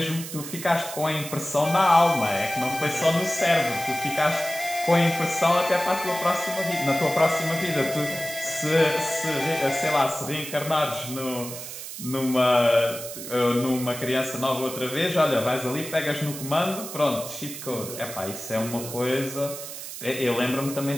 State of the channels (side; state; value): right; noise; hiss, 10 dB below the sound